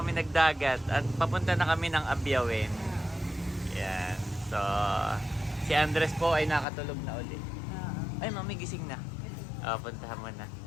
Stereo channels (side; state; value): right; drops out; at 6.7 s